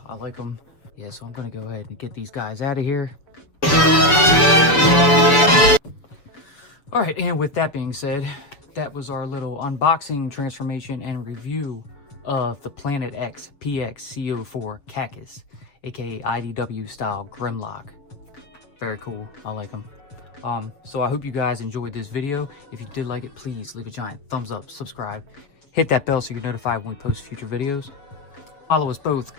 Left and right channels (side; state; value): right; late; 6.9 ms